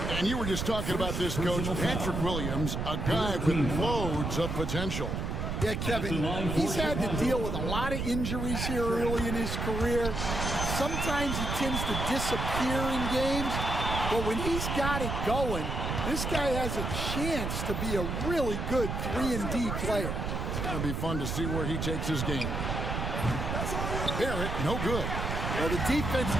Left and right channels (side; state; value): right; noise; rumble, 2 dB below the sound